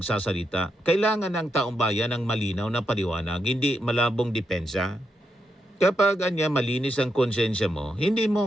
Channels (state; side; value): normal; both; correlation 0.82